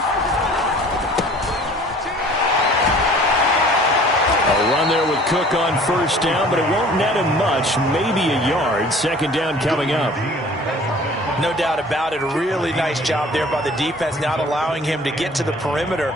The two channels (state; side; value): normal; both; correlation 0.50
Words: Cook on first down, but it won't net him much, maybe a yard. Second down coming up. No doubt about it. A really nice job there by the defense, not allowing him to get to the perimeter.